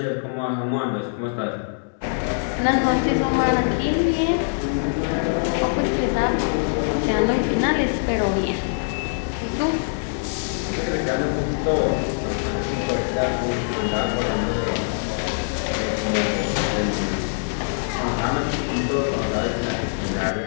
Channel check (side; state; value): right; silent; digital silence